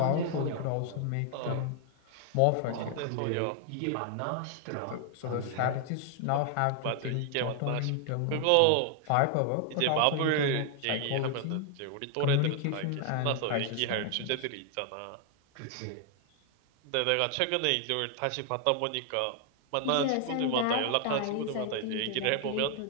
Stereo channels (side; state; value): both; different; correlation 0.00